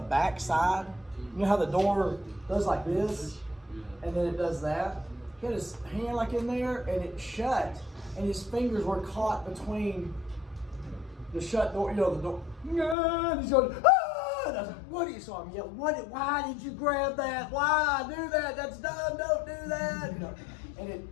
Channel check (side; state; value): right; drops out; at 13.0 s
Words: side. You know how the door does like this, and then it does that? He had his hand like in there, and it shut, and his fingers were caught between the shut door, the door. And he's going, ah! And I was like, what do you saw him yell? Why did you grab that? Why do that? That's dumb, don't do that. And it